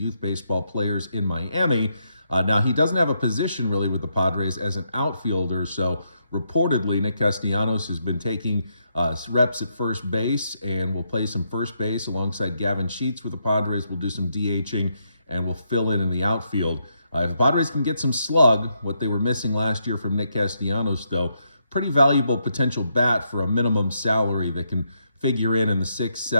baseball players in Miami. Now, he doesn't have a position really with the Padres as an outfielder, so reportedly Nick Castellanos has been taking reps at first base and will play some first base alongside Gavin Sheets with the Padres. We'll do some DHing and will fill in the outfield. If the Padres can get some slug, what they were missing last year from Nick Castellanos, though, pretty valuable potential bat for a minimum salary that can figure in the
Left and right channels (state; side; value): inverted; both; correlation -0.79